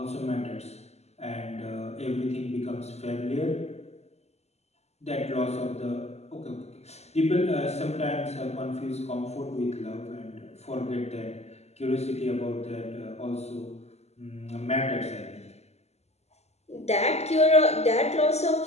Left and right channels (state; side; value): late; right; 0.31 ms